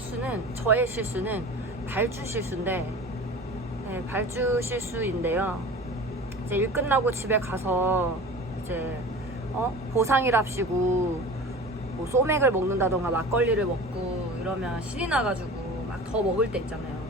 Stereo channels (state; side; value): normal; both; correlation 0.37